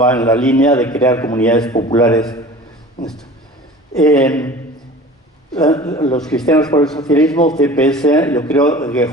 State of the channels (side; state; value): both; normal; correlation 0.41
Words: en la línea de crear comunidades populares. Los Cristianos por el Socialismo, CPS, yo creo que